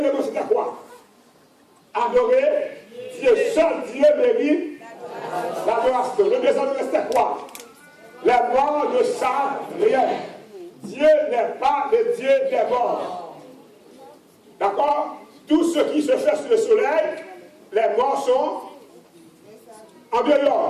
c'était quoi? Adorer Dieu. Seul Dieu mérite l'adoration. Le deuxième élément, c'était quoi? Les morts ne savent rien. Dieu n'est pas le Dieu des morts. D'accord? Tout ce qui se fait sous le soleil, les morts sont en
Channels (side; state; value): both; identical; correlation 1.00